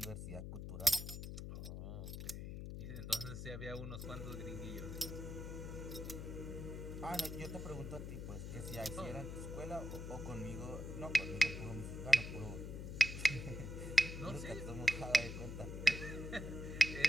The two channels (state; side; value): noise; left; hum, 6 dB below the sound